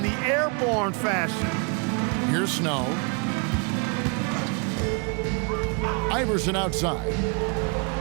the airborne fashion. Here's Snow. Iverson outside.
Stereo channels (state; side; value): quieter; left; 33.7 dB